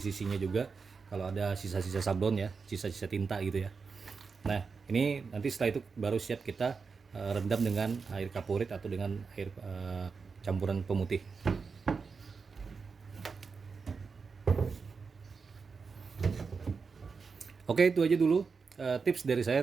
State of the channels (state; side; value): quieter; left; 5.1 dB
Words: juga. Kalau ada sisa-sisa sablon ya, sisa-sisa tinta gitu ya. Nah, ini nanti setelah itu baru siap kita rendam dengan air kaporit atau dengan air campuran pemutih. Oke, itu aja dulu tips dari